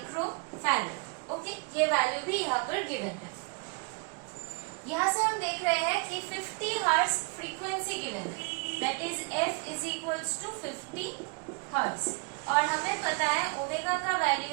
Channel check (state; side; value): quieter; left; 33.8 dB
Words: farad. Okay, ये वैल्यू भी यहाँ पर गिवन है। यहाँ से हम देख रहे हैं कि 50 हर्ट्ज फ्रीक्वेंसी गिवन है that is F is equals to 50 hertz और हमें पता है ओमेगा का